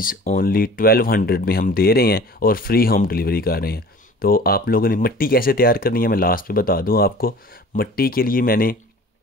ओनली 1200 में हम दे रहे हैं और फ्री होम डिलीवरी कर रहे हैं। तो आप लोगों ने मिट्टी कैसे तैयार करनी है मैं लास्ट पे बता दूं आपको। मिट्टी के लिए मैंने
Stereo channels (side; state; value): both; normal; correlation 0.44